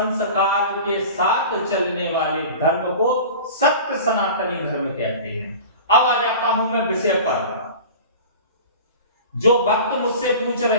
के साथ चलने वाले धर्म को सत्य सनातनी धर्म कहते हैं। अब आ जाता हूं मैं विषय पर। जो भक्त मुझसे पूछ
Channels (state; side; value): inverted; both; correlation -0.37